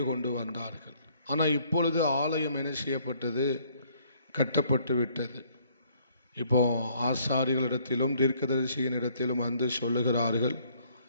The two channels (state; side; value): inverted; both; correlation -0.64